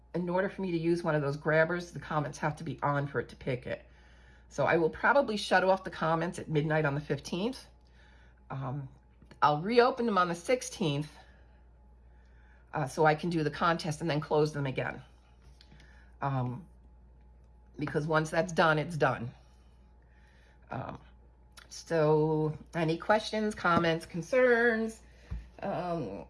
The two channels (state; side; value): identical; both; correlation 1.00